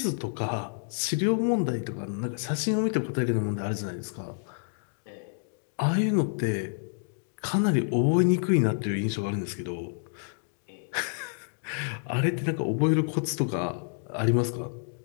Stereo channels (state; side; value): silent; right; digital silence